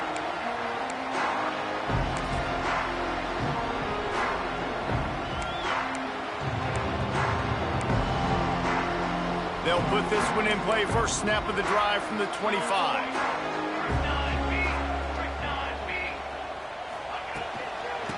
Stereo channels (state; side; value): identical; both; correlation 1.00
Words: They'll put this one in play. First snap of the drive from the 25.